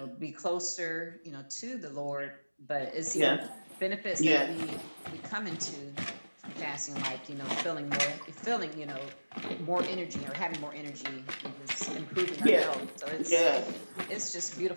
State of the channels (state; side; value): inverted; both; correlation -1.00